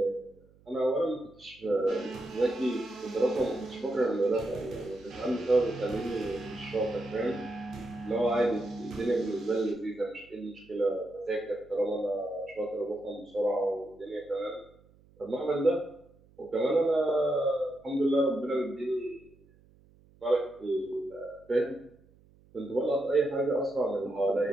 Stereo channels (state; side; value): noise; right; hum, 28 dB below the sound